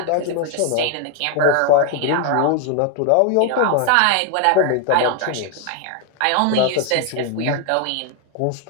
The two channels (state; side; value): different; both; correlation 0.01